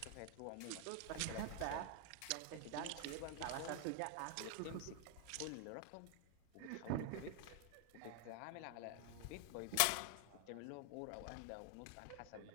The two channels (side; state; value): both; different; correlation 0.00